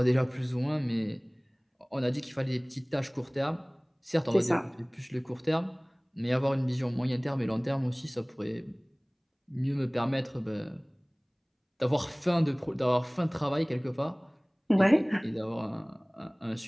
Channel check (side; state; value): both; identical; correlation 1.00